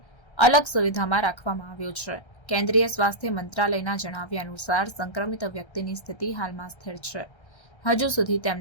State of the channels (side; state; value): right; late; 1.3 ms